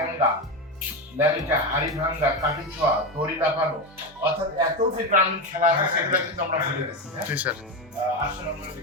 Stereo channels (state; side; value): normal; both; correlation 0.15